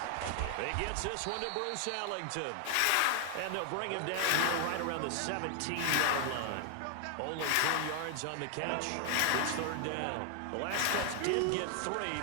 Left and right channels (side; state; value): both; different; correlation 0.00